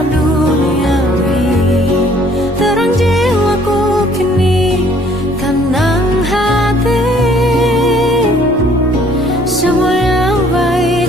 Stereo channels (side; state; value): both; normal; correlation 0.59